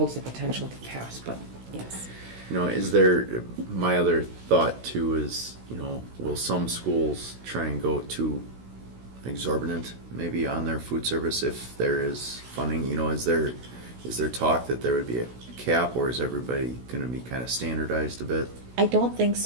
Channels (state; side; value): late; left; 16 ms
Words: the potential to pass, but yes. My other thought too is, will some schools try and go too exorbitant maybe on their food service if there is funding? Is there talk that there would be a cap, or is everybody going to be kind of standardized a bit? I don't think